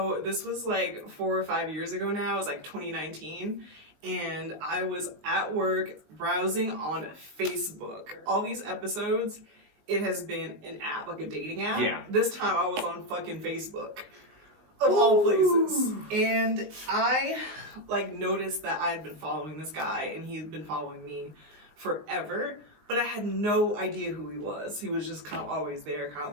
this was 4 or 5 years ago now. It was 2019. And I was at work browsing on Facebook. All these episodes, it has been an app, a dating app. Yeah. This time I was on fucking Facebook. Of all places. And I noticed that I had been following this guy and he had been following me forever, but I had no idea who he was. He was just kind of always there,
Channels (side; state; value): left; late; 19 ms